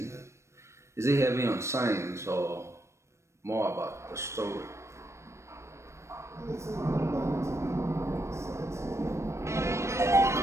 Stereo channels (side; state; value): left; late; 0.13 ms